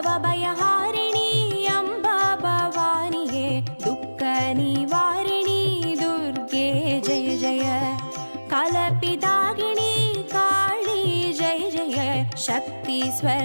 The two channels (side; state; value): both; inverted; correlation -1.00